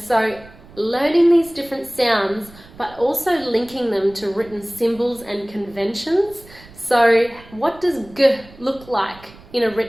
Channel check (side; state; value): right; noise; rumble, 22 dB below the sound